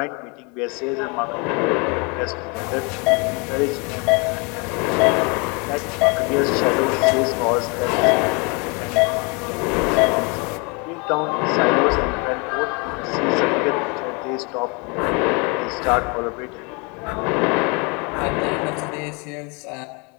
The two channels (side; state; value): right; quieter; 31.1 dB